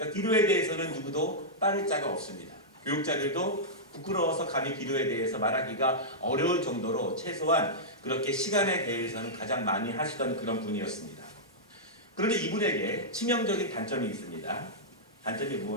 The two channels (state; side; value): normal; both; correlation -0.10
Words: 그러니까 기도에 대해서는 누구도 빠를 자가 없습니다. 교육자들도 부끄러워서 감히 기도에 대해서 말하기가 어려울 정도로 최소한 그렇게 시간에 대해서는 가장 많이 하시던 그런 분이었습니다. 그런데 이분에게 치명적인 단점이 있습니다. 단점이